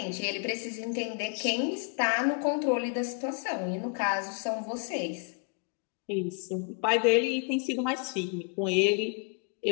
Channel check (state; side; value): quieter; right; 38.8 dB